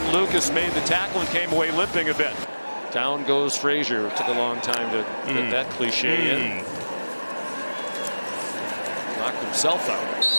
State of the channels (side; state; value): both; inverted; correlation -1.00